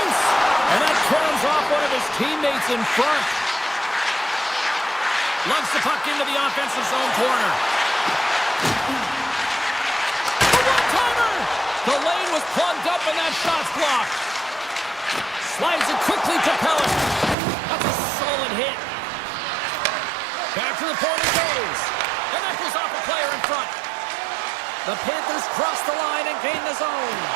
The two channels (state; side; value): drops out; left; at 17.4 s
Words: And that turns off one of his teammates in front. Lugs the puck into the offensive zone corner. A one-timer! The lane was plugged up and that shot's blocked. Slides it quickly to Pellet. That's a solid hit. Back to the point it goes. And that goes off a player in front. The Panthers cross the line and gain the zone.